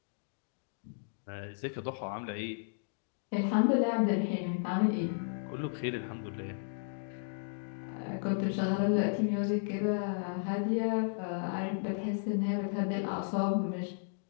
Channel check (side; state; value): right; silent; digital silence